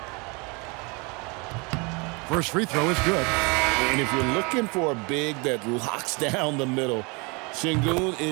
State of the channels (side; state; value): left; quieter; 29.5 dB